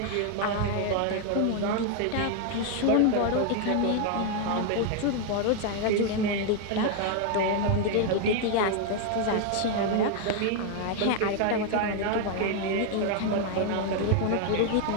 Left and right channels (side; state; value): both; different; correlation 0.00